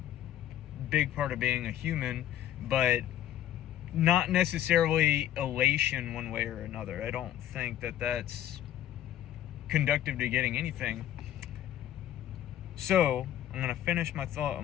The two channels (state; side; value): quieter; right; 11.9 dB